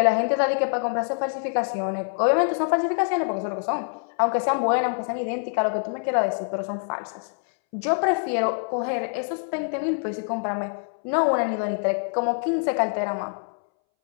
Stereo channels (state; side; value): silent; right; 62 dB below the other